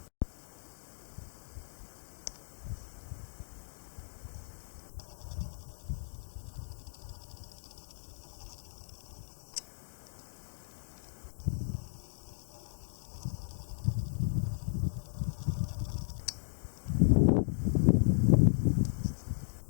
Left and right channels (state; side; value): silent; right; digital silence